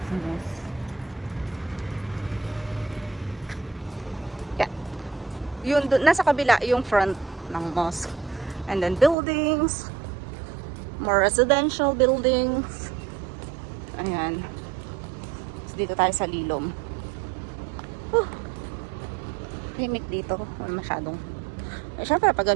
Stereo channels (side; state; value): left; drops out; at 9.2 s